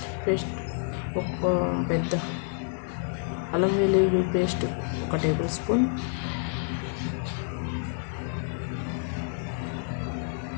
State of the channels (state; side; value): silent; right; 59 dB below the other